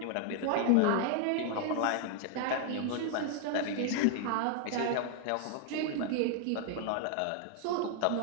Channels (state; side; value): different; both; correlation 0.00